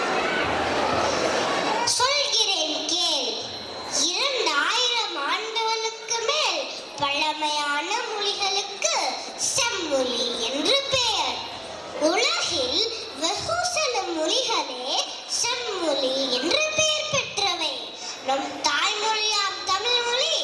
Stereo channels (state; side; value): identical; both; correlation 1.00